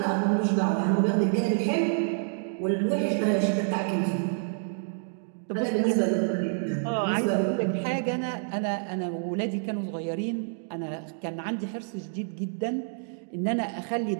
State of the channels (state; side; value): silent; left; digital silence